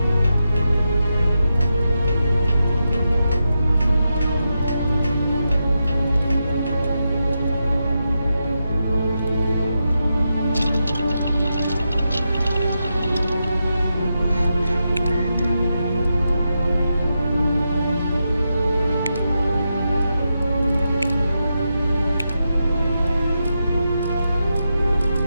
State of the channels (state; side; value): inverted; both; correlation -0.87